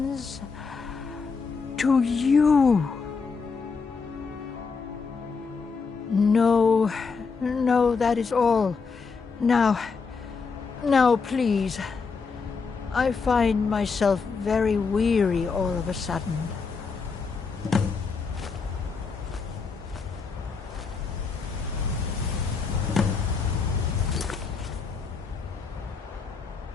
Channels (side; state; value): right; quieter; 5.0 dB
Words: to you. No, that is all. Now, please. I find myself very weary all of a sudden.